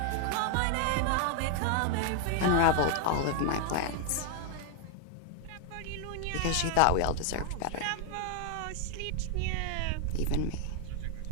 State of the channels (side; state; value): both; different; correlation 0.00